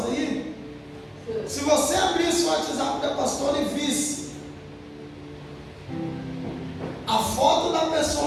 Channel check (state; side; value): identical; both; correlation 1.00